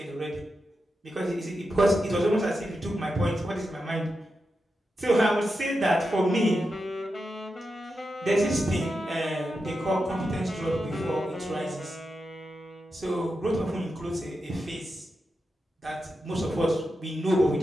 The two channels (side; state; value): both; normal; correlation 0.88